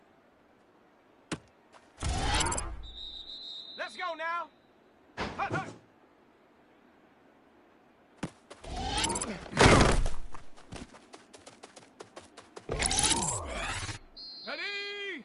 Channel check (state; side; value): identical; both; correlation 1.00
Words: Let's go now. Hut, hut. Ready.